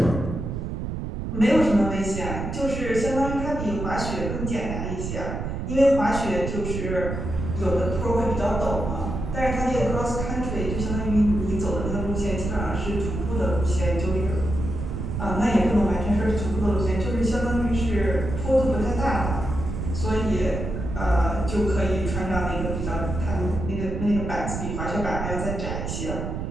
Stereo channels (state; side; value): noise; right; rumble, 4 dB below the sound